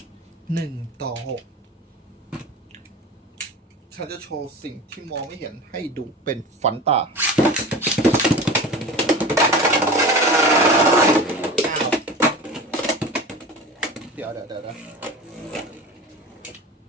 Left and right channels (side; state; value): both; normal; correlation 0.33